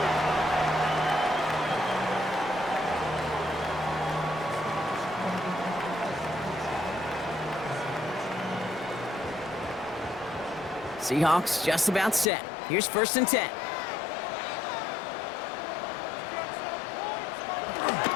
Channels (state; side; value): drops out; right; at 12.2 s